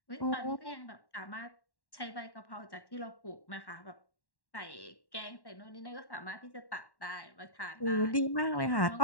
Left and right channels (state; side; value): late; right; 1.1 ms